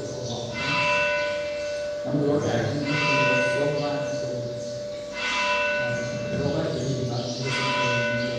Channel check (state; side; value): identical; both; correlation 1.00